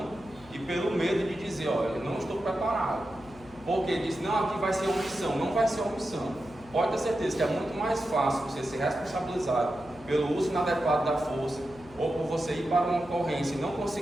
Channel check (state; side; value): noise; left; hum, 22 dB below the sound